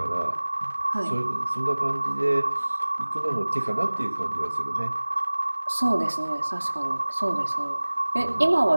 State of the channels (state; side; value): inverted; both; correlation -1.00